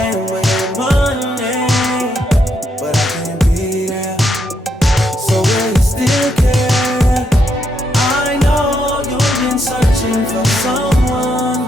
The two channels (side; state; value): both; normal; correlation 0.78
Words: with money, but I can't be there. So will you still care? I know you've been searching for someone